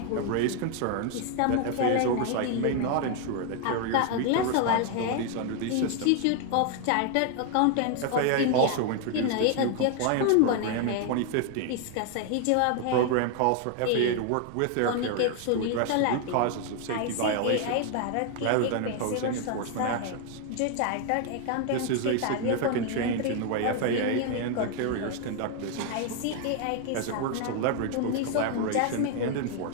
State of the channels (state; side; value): different; both; correlation 0.01